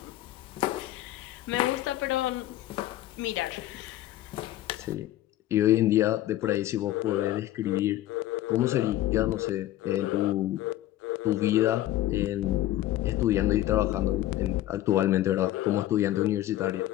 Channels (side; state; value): right; quieter; 14.3 dB